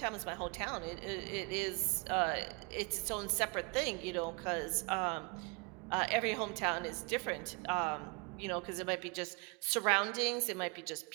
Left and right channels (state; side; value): quieter; left; 31.3 dB